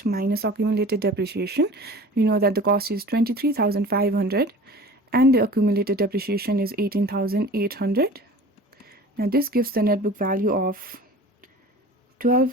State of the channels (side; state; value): both; normal; correlation 0.41